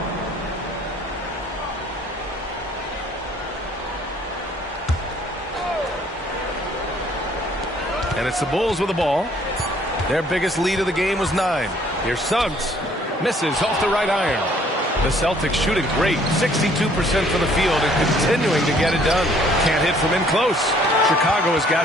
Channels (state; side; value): normal; both; correlation 0.60